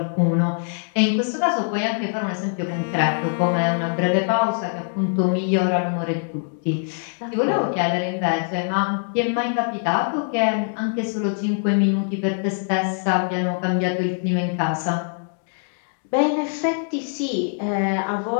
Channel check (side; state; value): right; silent; 63 dB below the other